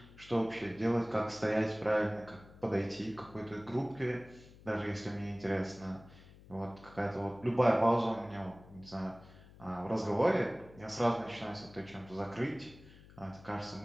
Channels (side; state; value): left; noise; hum, 21 dB below the sound